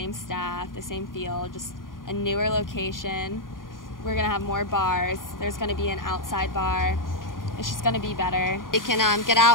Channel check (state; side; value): late; right; 0.90 ms